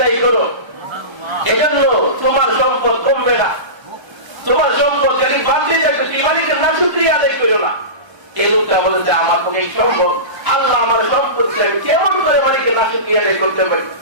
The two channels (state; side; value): late; left; 1.0 ms